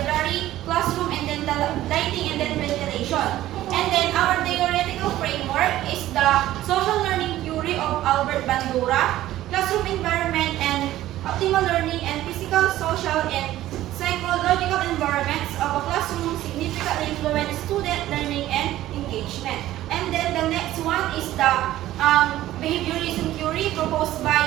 classroom, and then the lighting and then ventilation. And then our theoretical framework is the social learning theory of Albert Bandura, classroom environment and optimal learning and physical, social, and psychological environments of a classroom significantly influence student learning and engagement. And then the next one is the behaviorism theory proposed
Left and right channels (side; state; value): left; quieter; 14.4 dB